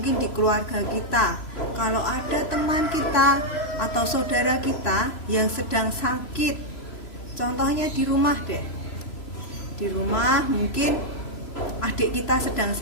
di keluarga kita, kalau ada teman kita atau saudara kita yang sedang sakit, contohnya di rumah deh, di rumah mungkin adik kita sedang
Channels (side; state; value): right; late; 3.0 ms